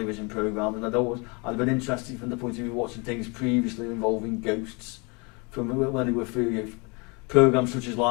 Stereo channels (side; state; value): right; quieter; 30.4 dB